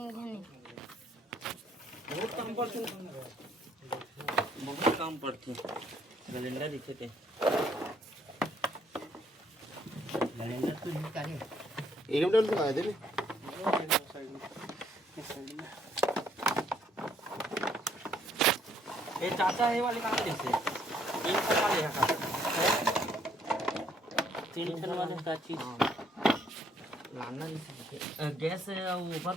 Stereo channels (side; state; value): both; normal; correlation 0.67